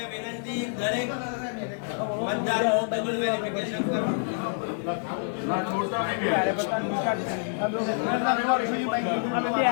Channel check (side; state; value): right; silent; digital silence